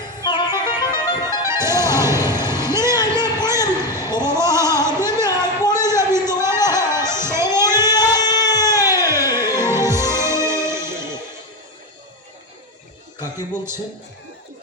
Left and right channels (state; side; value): normal; both; correlation 0.14